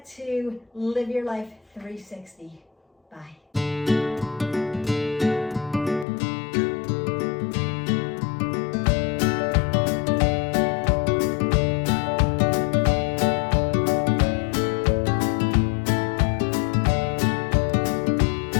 to live your life 360. Bye.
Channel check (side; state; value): right; drops out; at 6.1 s